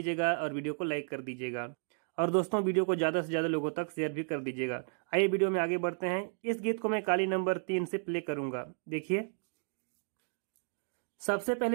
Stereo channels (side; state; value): left; silent; 56 dB below the other